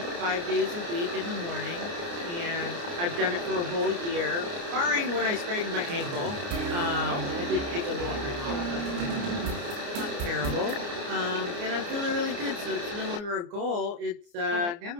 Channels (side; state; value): left; late; 29 ms